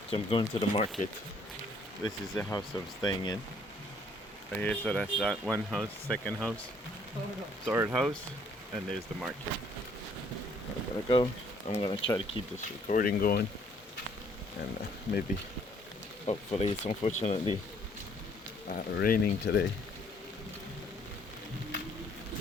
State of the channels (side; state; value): both; normal; correlation 0.63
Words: So I'm going to the market. This is the house I'm staying in. Right here, so that's that one house, second house, third house, and there's the market. I'm gonna go. I'm gonna try to keep this recording going, and maybe, hopefully, it's unfortunately raining today.